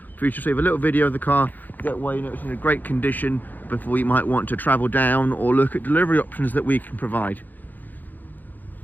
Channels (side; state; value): right; late; 0.085 ms